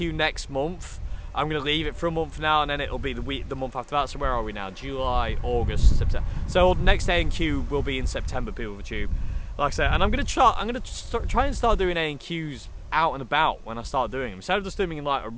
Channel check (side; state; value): both; identical; correlation 1.00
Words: next month. I'm going to leave it for a month now, and then it'll be the month after that. So where are we now? July, August, September. So next A&Q will be in September, people of the tube. Like I say, and I'm going to try and start doing A&Qs out and about when I start doing them. Instead of just doing them in like a